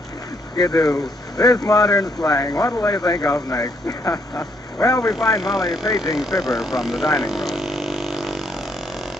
Skidoo. This modern slang, what'll they think of next? Well, we find Molly paging Fibber from the dining room.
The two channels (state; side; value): normal; both; correlation 0.71